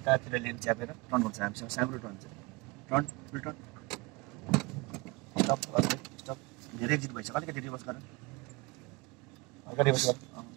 लेन च्यापेर टर्न गर्छ हामीसँग, सानो टर्न छ, टर्न फुल टर्न, स्टप स्टप, धेरै एक्जिट भइसक्यो, अलिकति रिभर्स गर, अगाडि रिभर्स गर,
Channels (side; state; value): left; quieter; 25.4 dB